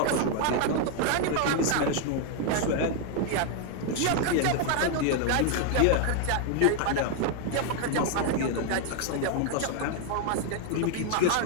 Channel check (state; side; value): different; both; correlation 0.00